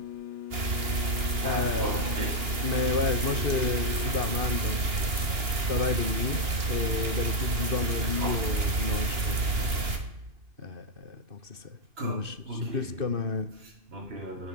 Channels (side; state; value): left; late; 2.9 ms